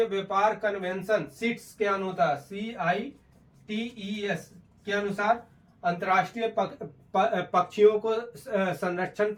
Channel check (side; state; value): both; identical; correlation 1.00